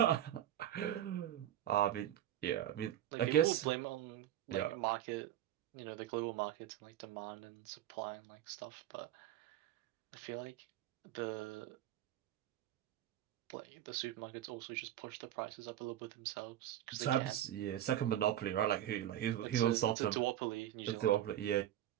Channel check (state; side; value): quieter; left; 11.9 dB